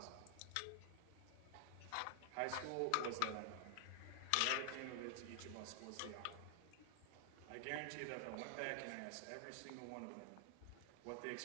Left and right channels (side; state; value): both; different; correlation 0.00